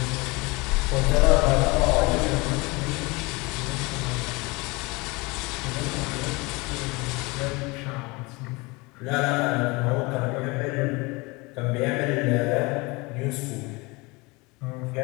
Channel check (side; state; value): right; quieter; 25.4 dB